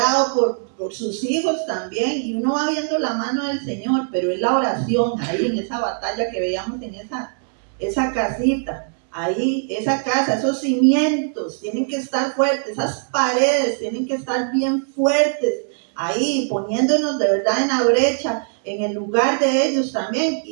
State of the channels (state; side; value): silent; left; 64 dB below the other